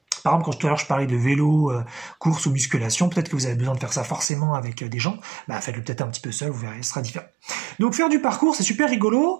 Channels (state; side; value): drops out; left; at 4.3 s